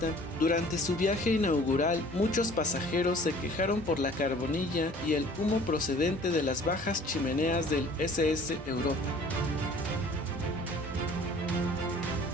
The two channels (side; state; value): both; normal; correlation 0.50